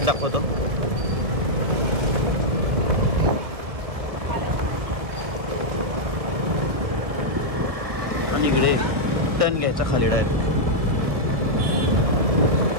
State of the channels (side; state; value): left; late; 1.7 ms